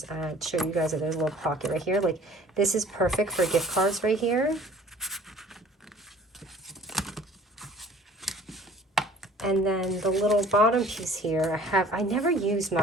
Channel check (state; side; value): normal; both; correlation 0.51